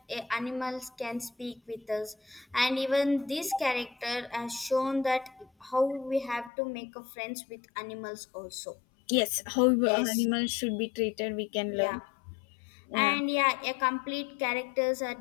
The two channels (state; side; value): drops out; right; at 6.5 s